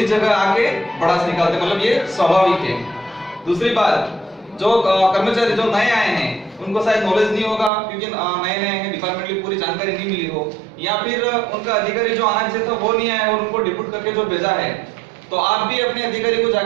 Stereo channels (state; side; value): drops out; left; at 7.7 s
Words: जगह आके भड़ास निकालते हैं, मतलब ये स्वाभाविक है। दूसरी बात, जो कर्मचारी जो नए आए हैं उनको शायद नॉलेज नहीं होगा क्योंकि नए हैं, डिपार्टमेंट की पूरी जानकारी नहीं मिली हो, या फिर उनका अधिकारी जो आना चाहिए था वो नहीं आया और उनको डिप्यूट करके जो भेजा है, तो आप भी अपने अधिकारी को